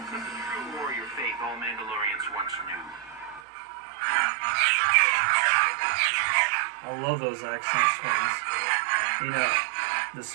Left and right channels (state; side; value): drops out; left; at 3.4 s